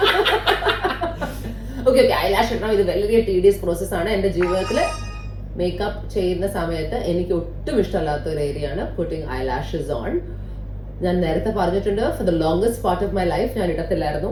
Okay, eyelash ഇടണം. ഇത് വളരെ tedious process ആണ്. എൻ്റെ ജീവിതത്തിൽ മേക്കപ്പ് ചെയ്യുന്ന സമയത്ത് എനിക്ക് ഒട്ടും ഇഷ്ടമല്ലാത്ത ഒരു ഏരിയ ആണ് പുട്ടിങ് ഐലാഷസ് ഓൺ. ഞാൻ നേരത്തെ പറഞ്ഞിട്ടുണ്ട്, for the longest part of my life ഞാൻ ഇടത്തില്ലായിരുന്നു.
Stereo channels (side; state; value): both; identical; correlation 1.00